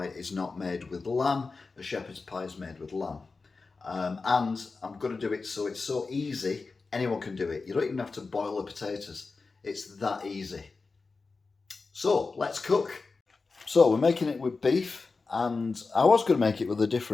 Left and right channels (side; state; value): right; quieter; 4.2 dB